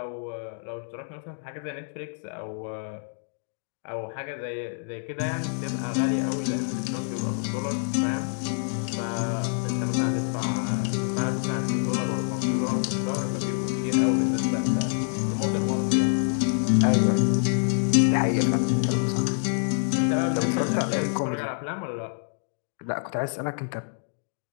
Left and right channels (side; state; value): right; silent; digital silence